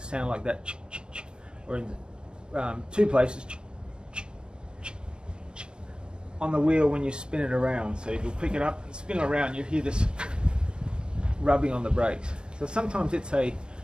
sound like that, or in two places, on the wheel when you spin it around. So if you pick it up and spin it around, you hear this rubbing on the brakes. So sometimes it's a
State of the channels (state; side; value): late; left; 0.050 ms